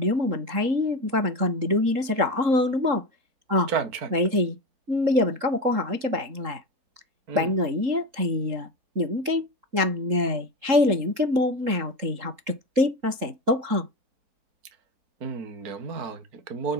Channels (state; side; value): late; left; 3.8 ms